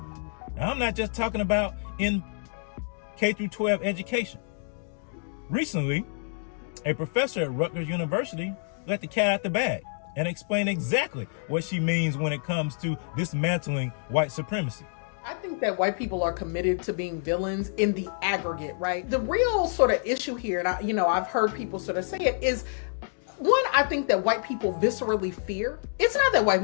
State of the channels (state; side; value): silent; right; digital silence